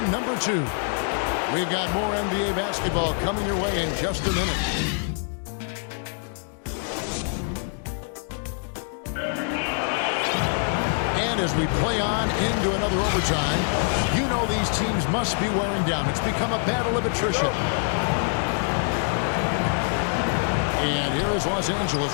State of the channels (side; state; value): right; silent; 57 dB below the other